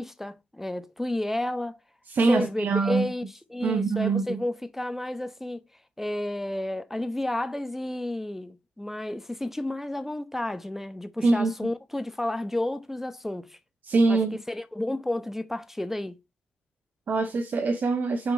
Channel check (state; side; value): normal; both; correlation 0.88